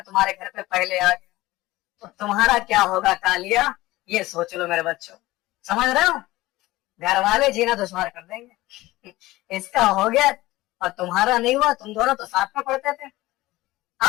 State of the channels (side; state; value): right; quieter; 18.3 dB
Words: तुम्हारे घर पे पहले आ गया तो तुम्हारा क्या होगा कालिया, ये सोच लो मेरे बच्चों। समझ रहे हो? घर वाले जीना दुश्वार कर देंगे। इसका हो गया और तुम्हारा नहीं हुआ, तुम दोनों तो साथ में पढ़ते थे।